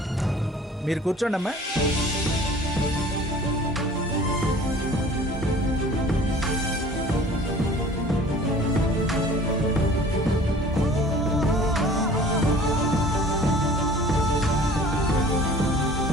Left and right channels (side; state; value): both; normal; correlation 0.47